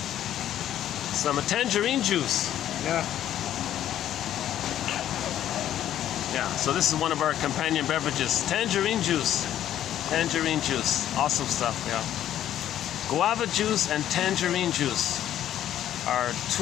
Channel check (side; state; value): right; quieter; 11.5 dB